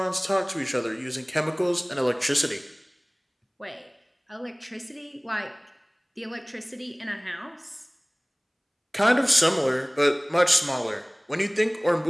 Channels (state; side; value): identical; both; correlation 1.00